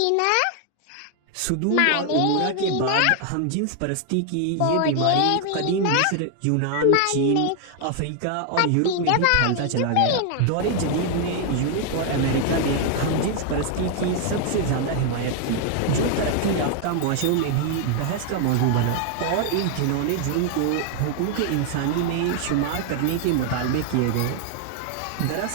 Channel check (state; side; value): different; both; correlation 0.00